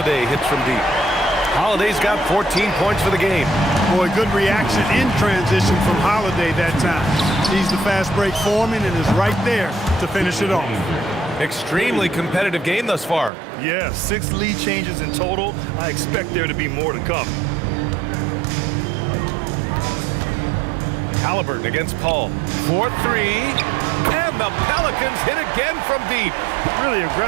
hits from deep. Holiday's got 14 points for the game. Boy, good reaction in transition from Holiday that time. He's the fast break foreman and is right there to finish it off. Extremely competitive game thus far. Yeah, 6 lead changes in total. I expect there to be more to come. Halliburton against Paul. 4-3. And the Pelicans hit again from deep. Really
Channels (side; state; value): left; drops out; at 13.3 s